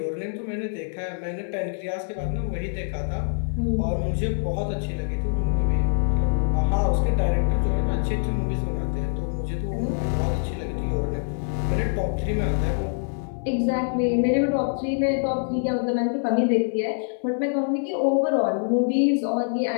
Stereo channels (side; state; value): right; silent; 59 dB below the other